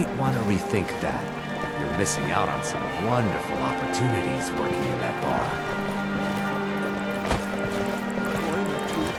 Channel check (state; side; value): identical; both; correlation 1.00